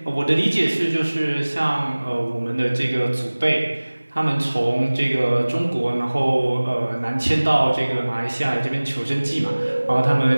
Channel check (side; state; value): both; inverted; correlation -1.00